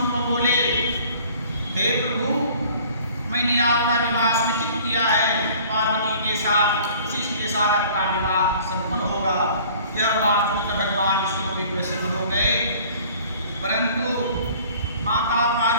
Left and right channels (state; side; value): inverted; both; correlation -0.51